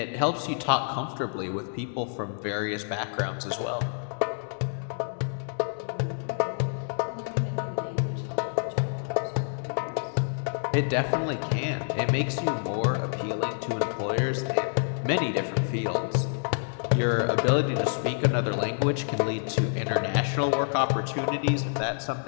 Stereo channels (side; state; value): right; silent; digital silence